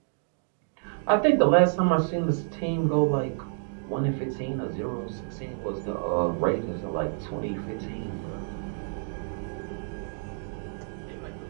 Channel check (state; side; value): silent; left; digital silence